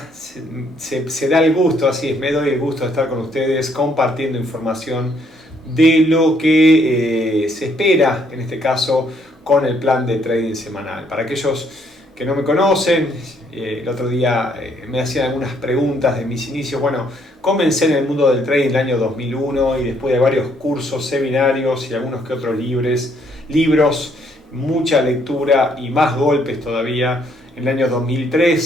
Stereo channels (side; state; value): both; normal; correlation 0.68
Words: se da el gusto, así es, me doy el gusto de estar con ustedes compartiendo información de lo que se espera, en este caso, con el plan de trading semanal. Para aquellos que no me conocen, el otro día me hacían algunas preguntas de mis inicios. Bueno, comencé en el mundo del trading en el año 2001 y después de varios cursos, seminarios y algunos que otros libros, mucha lectura y más golpes todavía. En el año